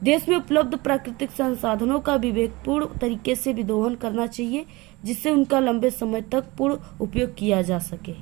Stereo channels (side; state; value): left; quieter; 22.9 dB